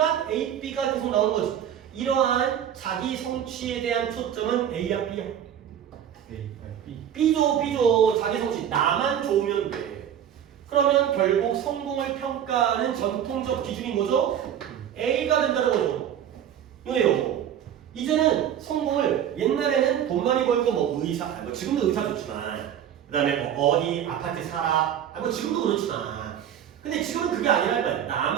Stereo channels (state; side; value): quieter; left; 9.7 dB